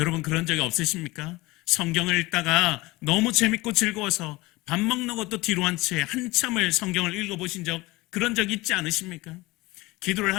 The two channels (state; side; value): quieter; right; 21.5 dB